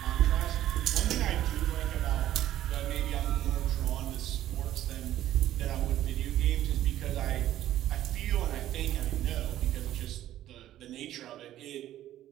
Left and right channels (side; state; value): left; quieter; 13.0 dB